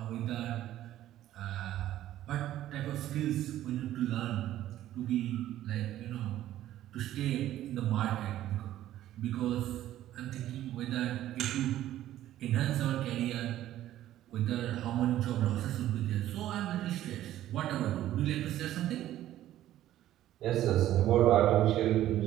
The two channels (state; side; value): quieter; left; 13.2 dB